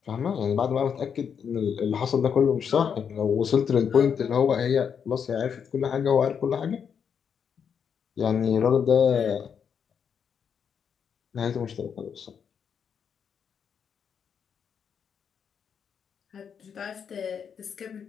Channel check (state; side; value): quieter; right; 7.2 dB